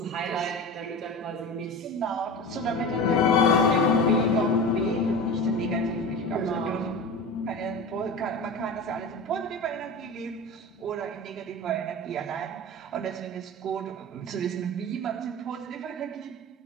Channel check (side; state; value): both; normal; correlation 0.30